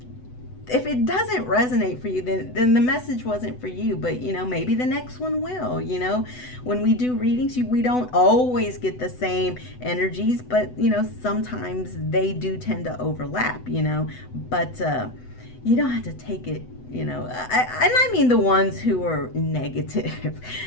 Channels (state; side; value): late; right; 8.0 ms